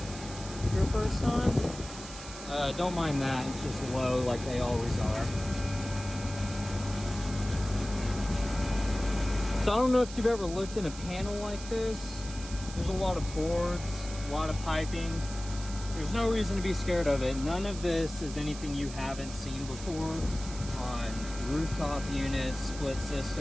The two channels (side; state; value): right; noise; hiss, 13 dB below the sound